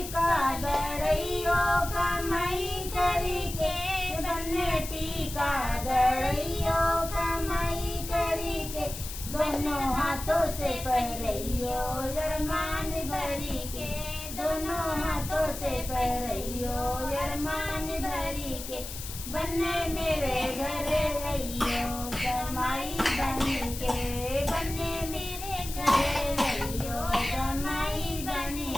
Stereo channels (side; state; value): left; noise; hiss, 9 dB below the sound